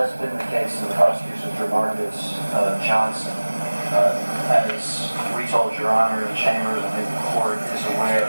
been the case in the prosecution of Jamarcus Johnson. As we told Your Honor in chambers, I think the court is aware,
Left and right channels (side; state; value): both; inverted; correlation -1.00